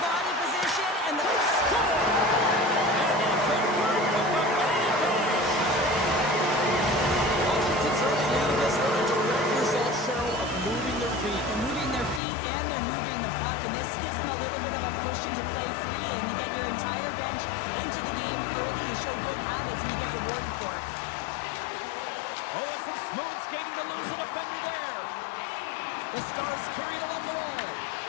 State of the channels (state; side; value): drops out; right; at 12.2 s